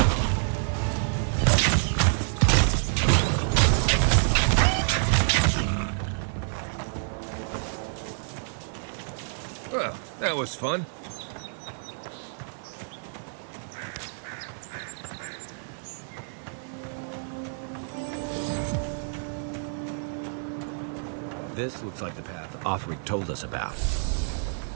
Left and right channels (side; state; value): left; silent; 59 dB below the other